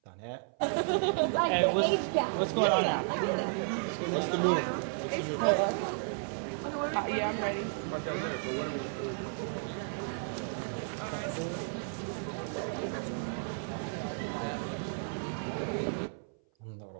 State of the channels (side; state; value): left; silent; 56 dB below the other